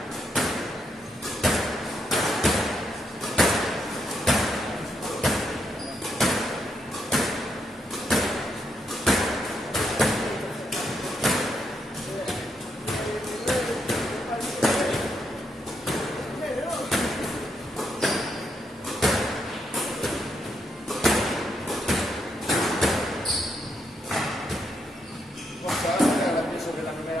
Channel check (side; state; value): both; normal; correlation 0.78